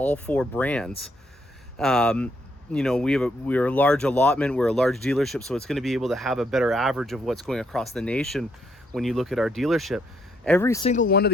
4 brands. You know, we're a large allotment, we're a large dealership, so it's going to be able to have a better average of what's going across the nation when you look at our dealership. Every single one of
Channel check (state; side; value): normal; both; correlation 0.74